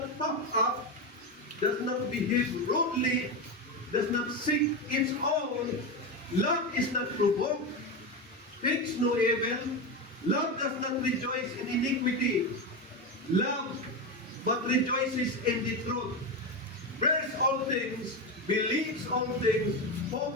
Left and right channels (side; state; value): both; normal; correlation 0.15